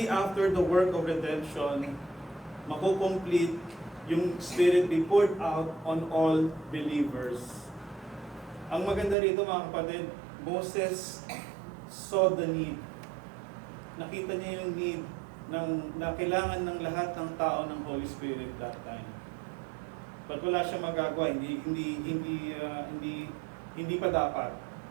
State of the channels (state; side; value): drops out; left; at 9.2 s